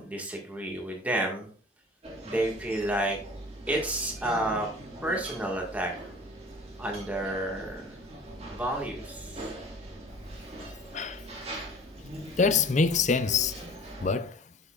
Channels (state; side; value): normal; both; correlation 0.46